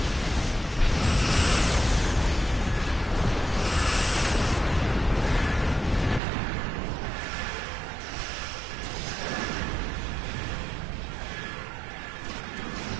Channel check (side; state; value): left; drops out; at 6.2 s